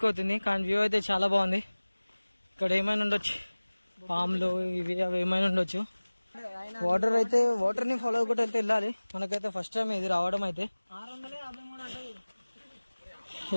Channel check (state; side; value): inverted; both; correlation -1.00